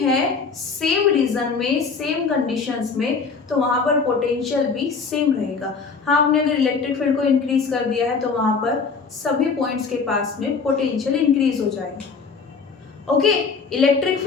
है, सेम रीजन में, सेम कंडीशंस में, तो वहां पर पोटेंशियल भी सेम रहेगा। हाँ, हमने अगर इलेक्ट्रिक फील्ड को इंक्रीज कर दिया है तो वहां पर सभी पॉइंट्स के पास में पोटेंशियल इंक्रीज हो जाएगा, okay. Electric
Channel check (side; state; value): right; quieter; 5.0 dB